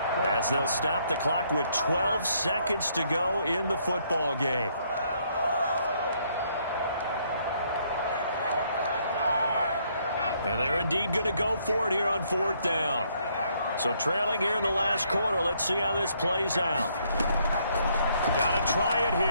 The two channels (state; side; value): inverted; both; correlation -0.70